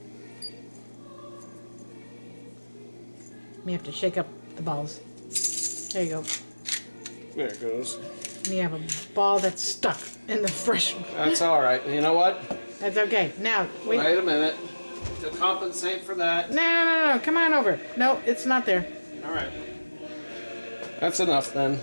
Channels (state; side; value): inverted; both; correlation -1.00